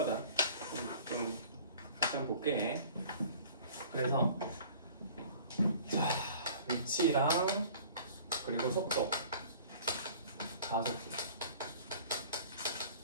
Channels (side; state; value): both; inverted; correlation -0.47